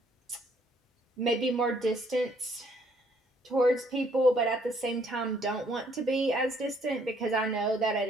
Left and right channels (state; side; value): normal; both; correlation 0.66